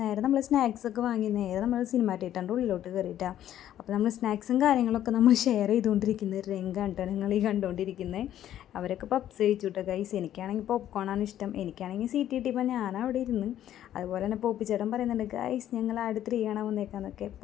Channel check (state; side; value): quieter; right; 11.6 dB